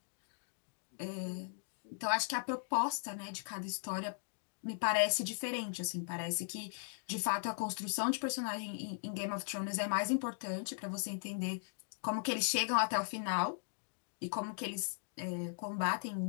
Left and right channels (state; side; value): silent; right; digital silence